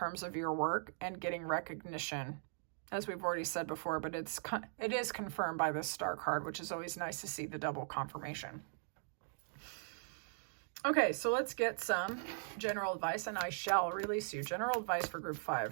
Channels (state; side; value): silent; left; digital silence